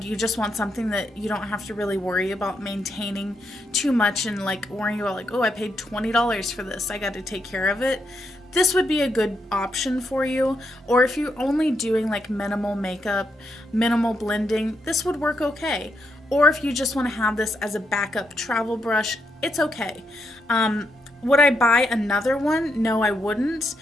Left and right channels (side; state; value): both; normal; correlation 0.81